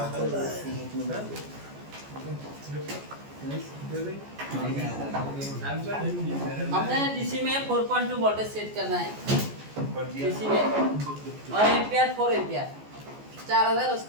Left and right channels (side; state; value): left; late; 14 ms